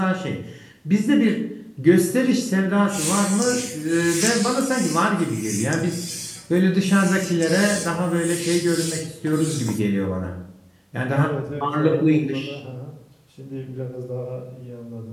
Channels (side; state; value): both; identical; correlation 1.00